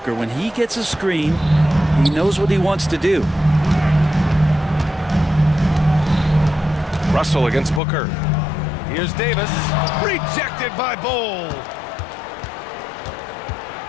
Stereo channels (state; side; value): drops out; right; at 7.8 s